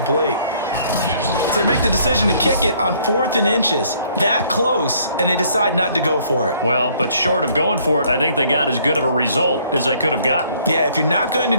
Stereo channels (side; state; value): both; inverted; correlation -0.62